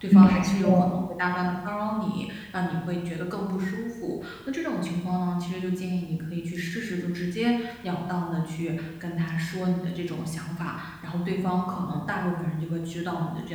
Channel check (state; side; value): identical; both; correlation 1.00